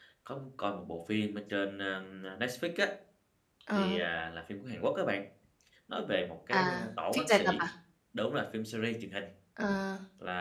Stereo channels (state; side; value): identical; both; correlation 1.00